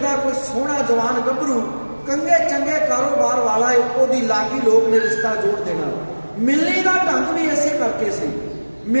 ਕੋਈ ਸੋਹਣਾ ਜਵਾਨ ਗੱਭਰੂ, ਕੰਗੇ ਚੰਗੇ ਕਾਰੋਬਾਰ ਵਾਲਾ ਏ, ਉਹਦੀ ਲਾਗੀ ਲੋਕ ਨੇ ਰਿਸ਼ਤਾ ਜੋੜ ਦੇਣਾ। ਮਿਲਣੀ ਦਾ ਢੰਗ ਵੀ ਇਸੇ ਕਰਕੇ ਸੀ।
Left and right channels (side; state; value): both; inverted; correlation -1.00